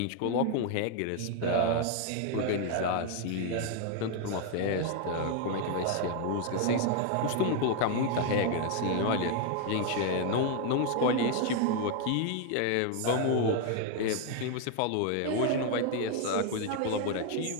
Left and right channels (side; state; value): both; different; correlation 0.00